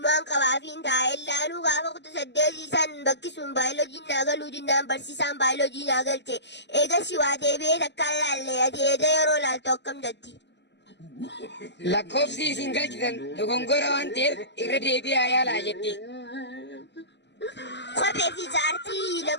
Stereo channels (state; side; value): late; right; 0.51 ms